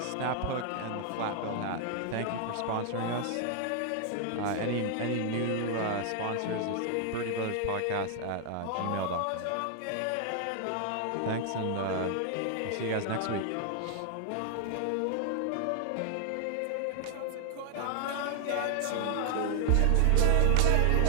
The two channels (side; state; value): both; different; correlation 0.00